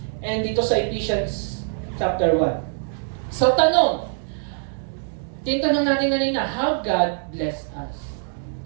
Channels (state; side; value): silent; left; digital silence